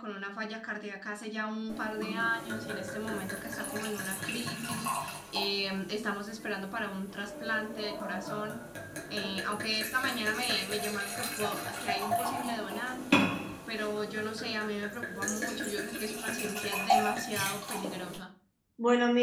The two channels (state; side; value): identical; both; correlation 1.00